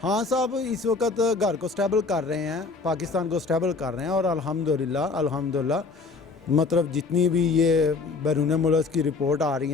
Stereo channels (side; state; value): right; quieter; 4.1 dB